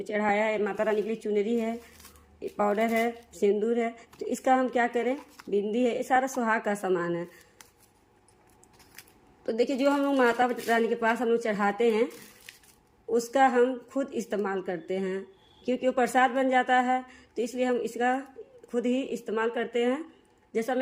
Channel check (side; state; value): both; identical; correlation 1.00